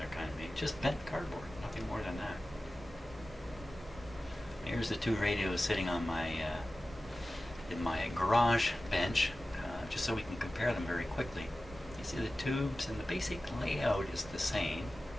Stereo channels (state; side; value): normal; both; correlation 0.95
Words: kind of made. Just bent cardboard, nothing more than that. Here's the 2 radios sitting on my in my garage bench, just so we can compare them very quickly. You see the tubes and the basic layout is the same.